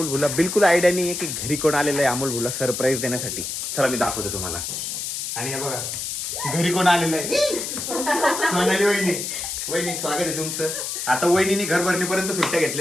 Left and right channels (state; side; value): noise; left; hiss, 4 dB below the sound